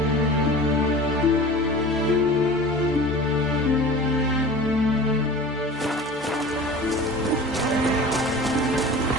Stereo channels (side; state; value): both; normal; correlation 0.38